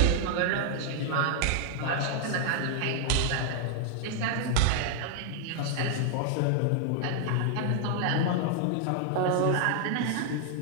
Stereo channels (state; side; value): different; both; correlation -0.01